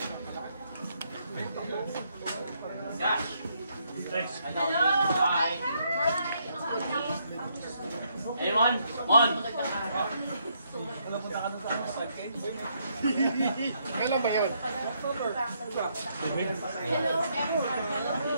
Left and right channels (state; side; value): inverted; both; correlation -0.74